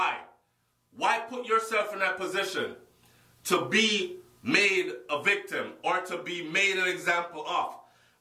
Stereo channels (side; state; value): both; identical; correlation 1.00